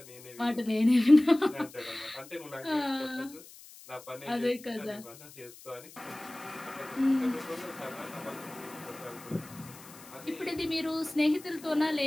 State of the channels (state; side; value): noise; left; hiss, 19 dB below the sound